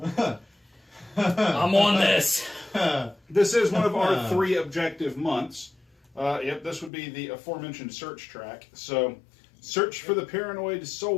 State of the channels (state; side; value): drops out; right; at 6.9 s